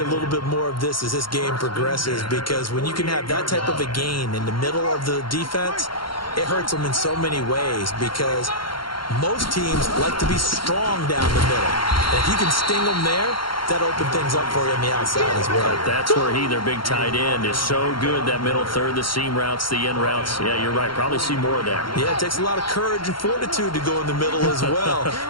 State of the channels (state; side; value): late; right; 0.73 ms